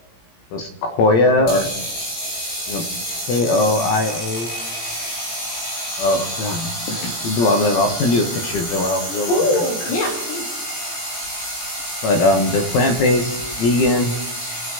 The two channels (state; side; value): late; right; 17 ms